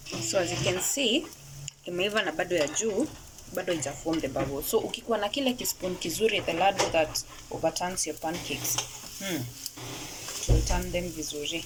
So as you can see, imeiva na bado ya juu bado ija form the bubble. So ukikuwa na kile kispoon kizuri, the ladle that overturns your pancakes, to turn them vizuri.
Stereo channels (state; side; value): identical; both; correlation 1.00